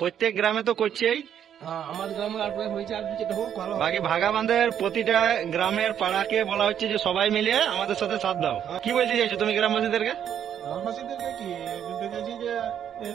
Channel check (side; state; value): left; quieter; 9.3 dB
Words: গ্রামে তো করছেই। হ্যাঁ, আমাদের গ্রামে আর হয়েছে, আর যেটা হোক ভালো। বাকি ভাগাবান্ধের প্রতিটা গ্রামের পাড়াকে বলা হচ্ছে যে সবাই মিলে আমাদের সাথে সাথ দাও। কি বলতে চাইছো তুমি গ্রামবাসীদেরকে? গ্রামবাসীদেরকে কি বলতে চাইছি, যে